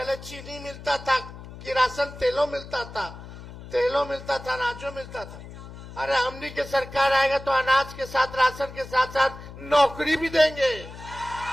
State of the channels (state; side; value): noise; left; hum, 14 dB below the sound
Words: चीनी मिलता था, किरासन तेलों मिलता था, अनाजों मिलता था। अरे हमनी के सरकार आएगा तो अनाज के साथ, राशन के साथ साथ नौकरी भी देंगे,